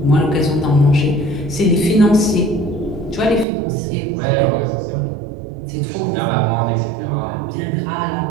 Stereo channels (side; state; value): left; drops out; at 3.5 s